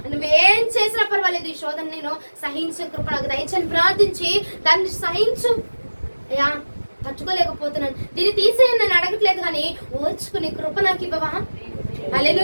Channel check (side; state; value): both; inverted; correlation -1.00